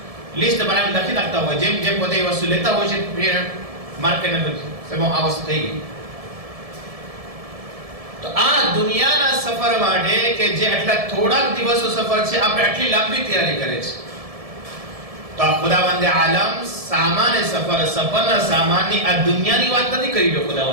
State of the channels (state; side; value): late; left; 1.7 ms